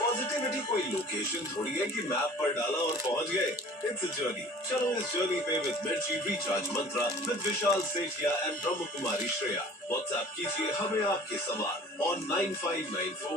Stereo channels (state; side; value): normal; both; correlation 0.46